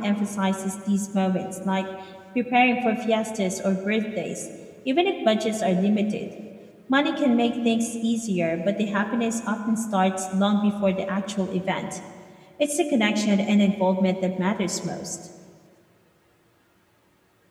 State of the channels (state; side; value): identical; both; correlation 1.00